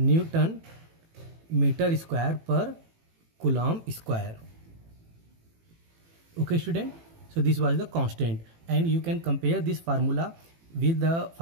meter square per Coulomb square. Okay, student. So this was the constant, and you can compare this formula with the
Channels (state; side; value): late; left; 18 ms